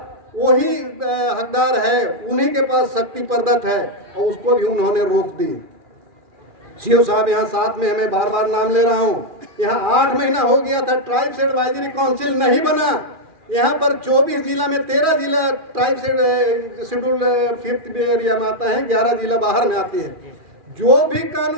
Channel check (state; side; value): late; left; 2.4 ms